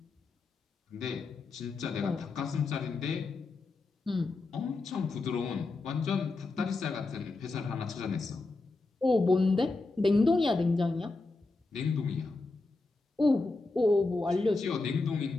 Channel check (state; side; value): quieter; right; 3.5 dB